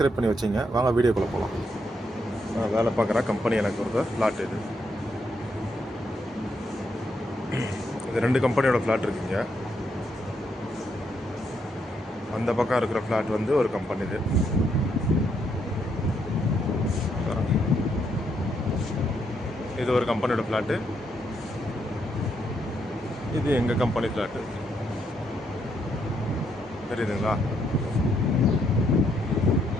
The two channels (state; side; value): normal; both; correlation 0.76